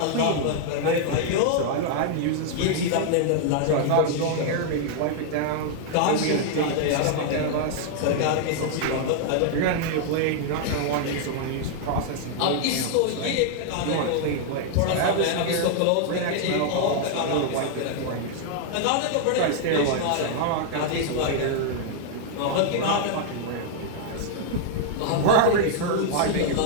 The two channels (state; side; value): different; both; correlation -0.01